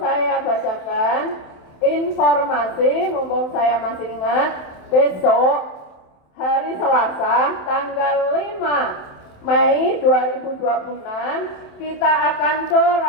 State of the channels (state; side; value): late; right; 27 ms